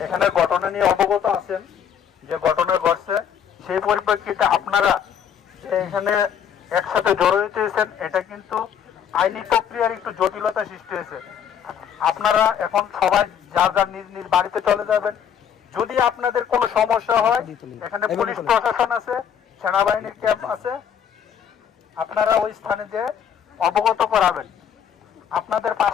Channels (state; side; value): quieter; right; 8.4 dB